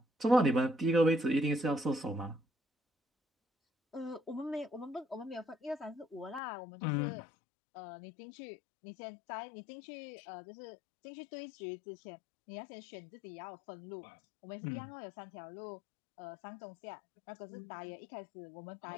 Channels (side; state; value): right; drops out; at 6.4 s